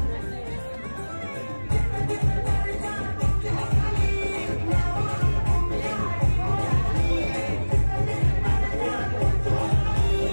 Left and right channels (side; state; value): both; inverted; correlation -1.00